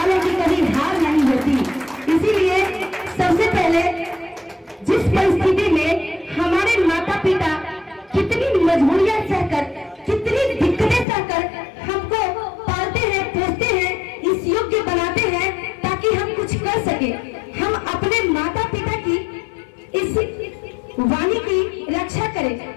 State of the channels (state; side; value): drops out; right; at 11.1 s